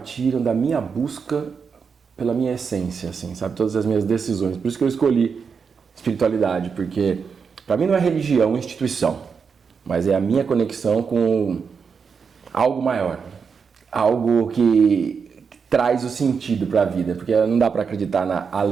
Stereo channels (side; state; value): left; quieter; 5.9 dB